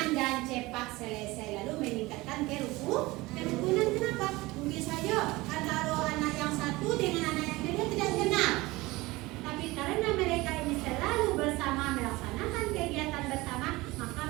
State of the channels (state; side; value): quieter; left; 20.9 dB